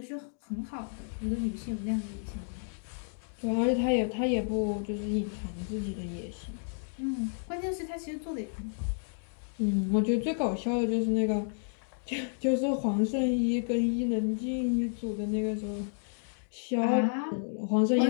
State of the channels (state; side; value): silent; right; digital silence